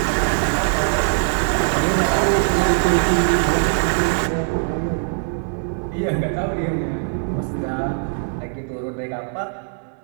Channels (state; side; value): silent; left; digital silence